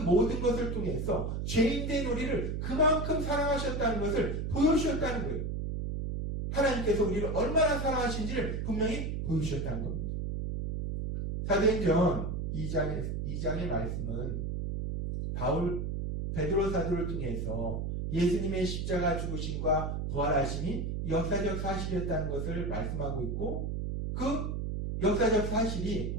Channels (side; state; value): right; noise; hum, 2 dB below the sound